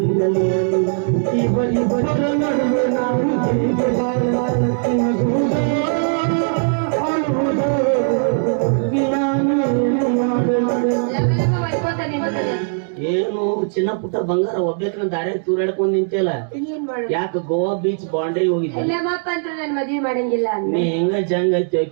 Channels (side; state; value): left; silent; 66 dB below the other